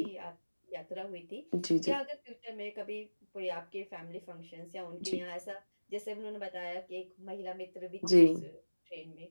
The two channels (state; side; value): inverted; both; correlation -1.00